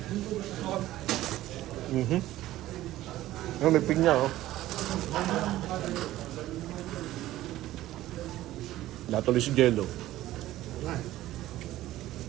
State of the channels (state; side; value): quieter; left; 15.1 dB